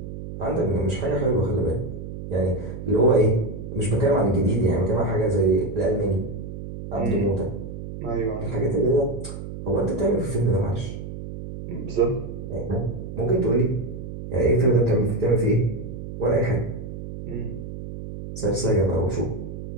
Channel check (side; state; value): right; noise; hum, 9 dB below the sound